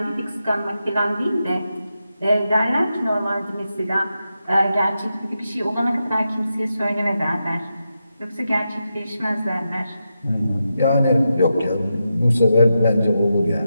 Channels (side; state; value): both; inverted; correlation -0.88